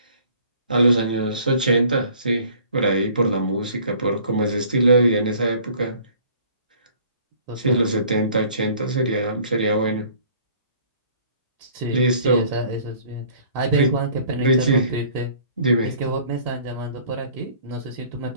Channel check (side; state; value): both; inverted; correlation -0.54